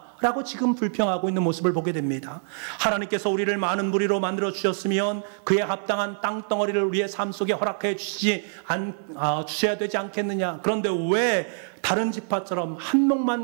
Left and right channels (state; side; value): silent; left; 62 dB below the other